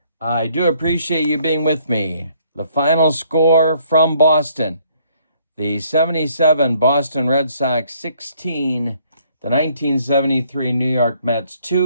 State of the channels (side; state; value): both; inverted; correlation -0.65